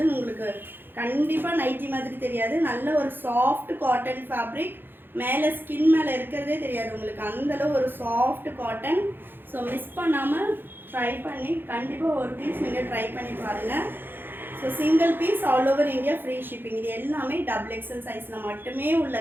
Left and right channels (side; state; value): left; late; 0.099 ms